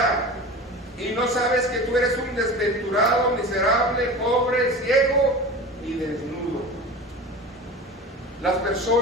y no sabes que tú eres un desventurado, miserable, pobre, ciego y desnudo. Las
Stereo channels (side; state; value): both; normal; correlation 0.33